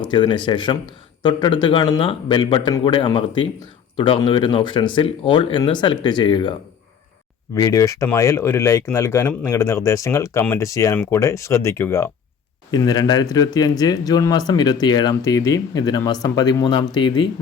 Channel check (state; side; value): quieter; right; 7.2 dB